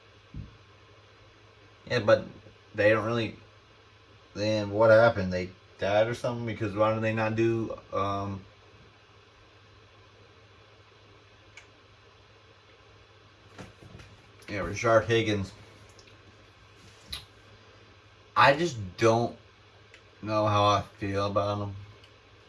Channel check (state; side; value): identical; both; correlation 1.00